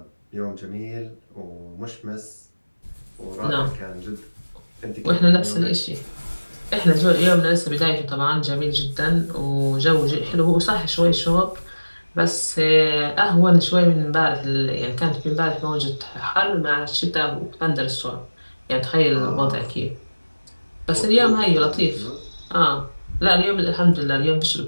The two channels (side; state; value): both; inverted; correlation -1.00